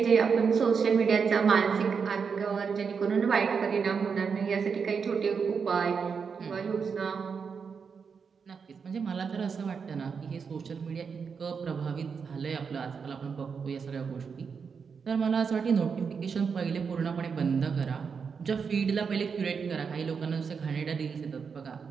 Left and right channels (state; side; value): quieter; left; 5.9 dB